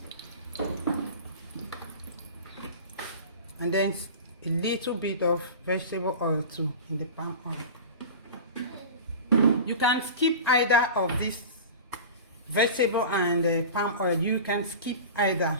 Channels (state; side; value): inverted; both; correlation -0.33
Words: And then a little bit of vegetable oil too in the palm oil. You can skip either of these, vegetable and palm oil. You can skip either.